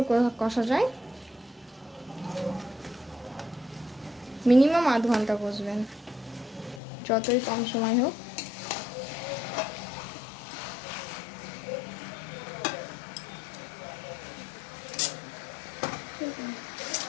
কষা যায়। মিনিমাম আধ ঘন্টা কষবেন, যতই কম সময় হোক।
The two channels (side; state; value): right; drops out; at 6.8 s